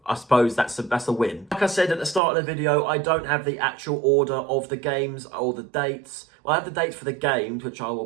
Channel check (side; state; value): left; drops out; at 2.2 s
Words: I suppose that's a win. Like I said at the start of the video, I don't have the actual order of the games or the dates. Well, I have the dates for the games, which I